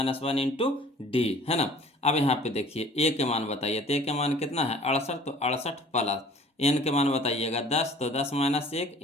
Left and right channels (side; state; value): both; normal; correlation 0.50